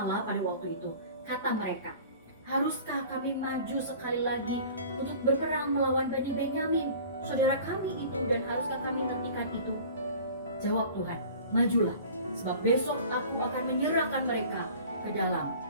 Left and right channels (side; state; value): both; inverted; correlation -0.44